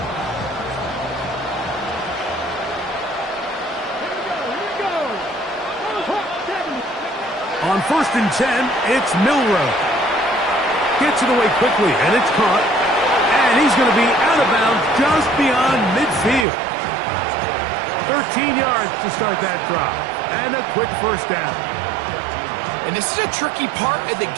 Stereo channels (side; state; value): left; drops out; at 16.4 s